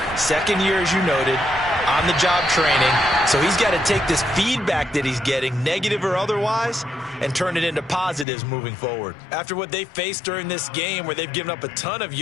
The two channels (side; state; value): right; drops out; at 8.2 s